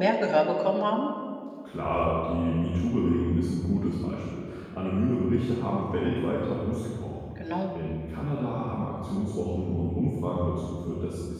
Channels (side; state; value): both; identical; correlation 1.00